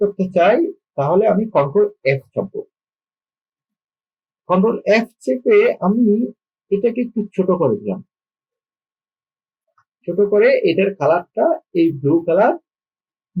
করতে চাই তাহলে আমি কন্ট্রোল এফ চাপবো। কন্ট্রোল এফ চেপে আমি এটাকে একটু ছোট করে দিলাম। ছোট করে এটার কালারটা এই ব্লু কালার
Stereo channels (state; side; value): identical; both; correlation 1.00